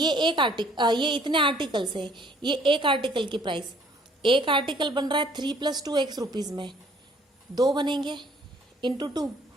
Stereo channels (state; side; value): normal; both; correlation 0.60